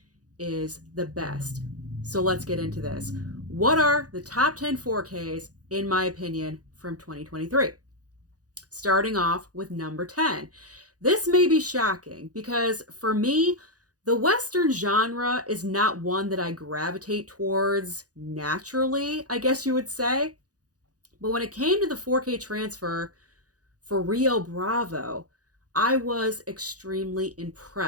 is the best. So let's get into this. What are the top 10 4Ks, in my opinion, from 2023? Starting off with number 10. This may be shocking because for me, the Western genre is not one that I gravitate towards naturally, I guess you would say. But when it came to the 4K transfer for Rio Bravo, I was extremely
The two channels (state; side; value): late; left; 0.67 ms